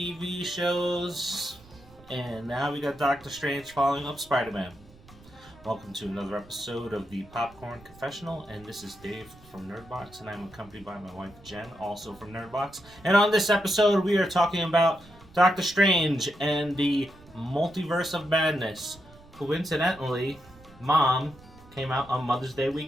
shows, and now we got Doctor Strange following up Spider-Man. Welcome to another episode of the Popcorn Confessional, and this is Dave from Nerdbox, and I'm accompanied by my wife Jenn, also from Nerdbox. And on this episode, we are talking about Doctor Strange and the Multiverse of Madness. Coincidentally, Mom came out on Mother's Day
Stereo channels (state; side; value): noise; right; rumble, 24 dB below the sound